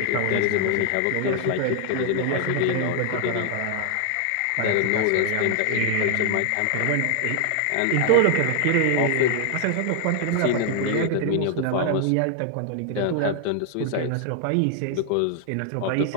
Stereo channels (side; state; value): both; different; correlation 0.00